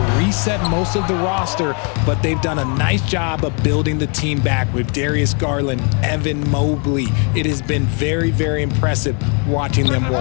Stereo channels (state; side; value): quieter; right; 37.1 dB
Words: reset most of the roster, but they've done a nice job of building the team back with Darius Garland, Evan Mobley. It has been very, very impressive watching them